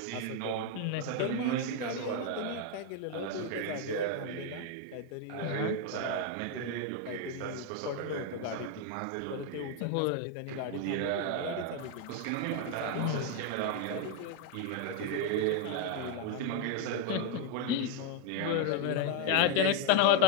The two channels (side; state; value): both; different; correlation 0.01